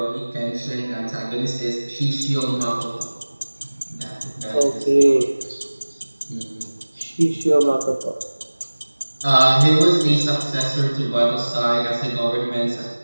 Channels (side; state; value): both; inverted; correlation -1.00